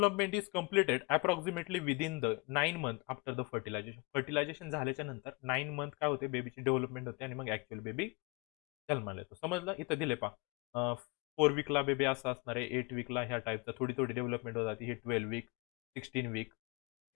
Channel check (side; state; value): right; quieter; 28.0 dB